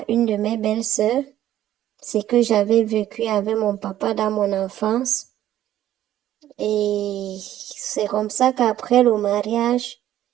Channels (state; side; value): quieter; left; 12.6 dB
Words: une de mes belles-sœurs. C'est que j'avais vécu avec mon papa dans mon enfance. Et c'est comme ça qu'après le mariage,